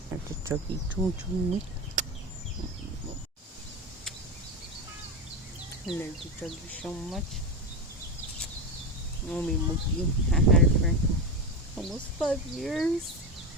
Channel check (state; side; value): normal; both; correlation 0.17